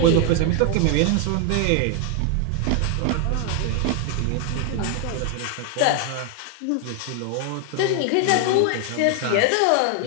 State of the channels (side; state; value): both; different; correlation 0.00